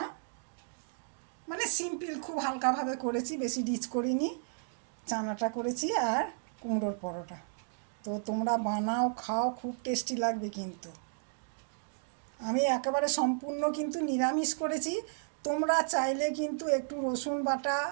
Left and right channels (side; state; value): left; silent; digital silence